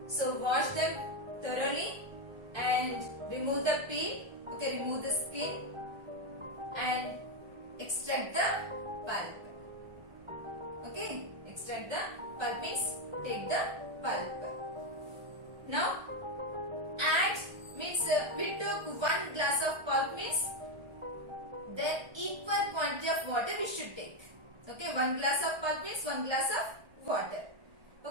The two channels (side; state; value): left; late; 1.3 ms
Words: so wash them thoroughly and remove the peel. Okay, remove the skin and extract the pulp. Okay, extract the pulp means take the pulp. Now add means we took 1 glass of pulp means then equal quantity of water we should take. Okay, 1 glass of pulp means 1 glass of water.